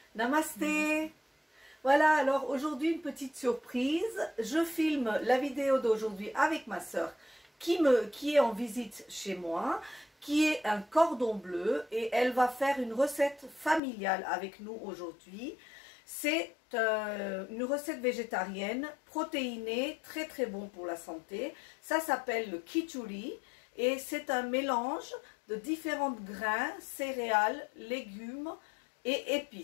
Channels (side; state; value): right; drops out; at 13.8 s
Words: Namasté. Voilà, alors aujourd'hui une petite surprise. Je filme la vidéo d'aujourd'hui avec ma soeur qui est en visite chez moi, qui est un cordon bleu et elle va faire une recette familiale avec nous aujourd'hui. C'est une recette végétarienne, protéinée, très très bon pour la santé. Ça s'appelle le khichdi et c'est un mélange de différents grains, céréales, légumes et